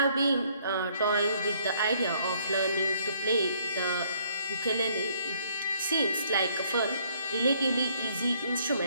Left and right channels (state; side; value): inverted; both; correlation -0.65